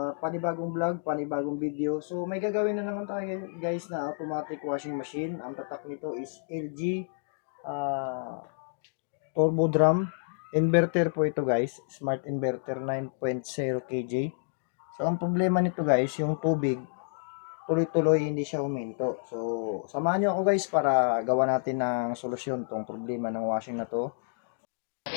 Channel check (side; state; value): right; silent; digital silence